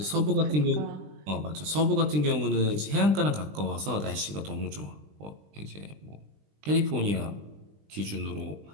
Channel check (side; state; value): left; late; 20 ms